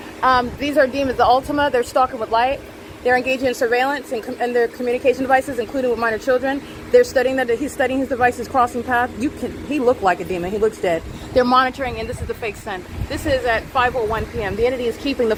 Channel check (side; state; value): both; identical; correlation 1.00